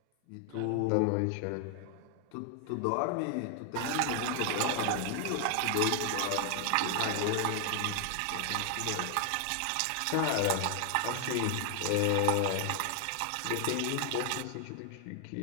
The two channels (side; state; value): both; different; correlation 0.00